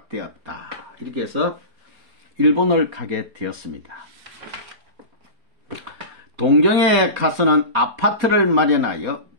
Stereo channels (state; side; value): late; left; 4.2 ms